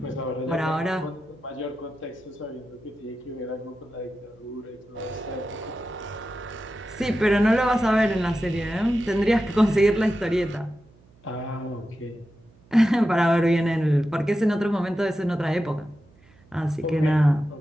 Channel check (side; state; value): right; noise; hum, 29 dB below the sound